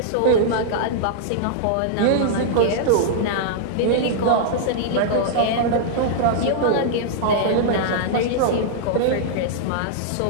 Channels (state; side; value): different; both; correlation -0.02